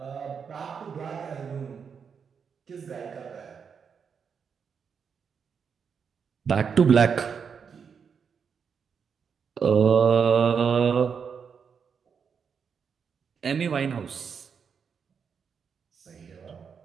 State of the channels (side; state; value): left; quieter; 6.5 dB